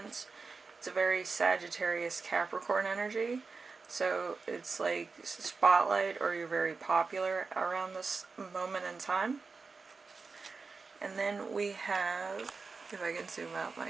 It's a very Sagittarius Capricorn energy. So it's like spotlight, or you're very popular around this moment in time. And then we have, if I can zoom out my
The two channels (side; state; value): left; quieter; 4.5 dB